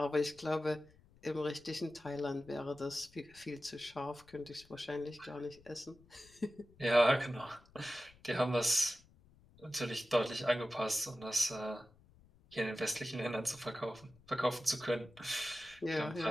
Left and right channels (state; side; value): noise; left; rumble, 27 dB below the sound